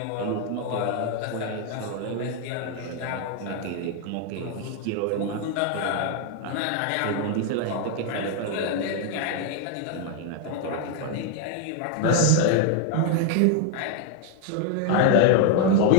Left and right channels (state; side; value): different; both; correlation 0.00